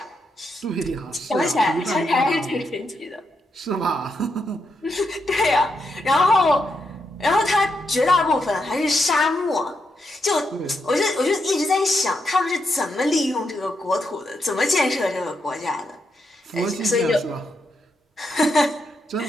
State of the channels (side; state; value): both; normal; correlation 0.82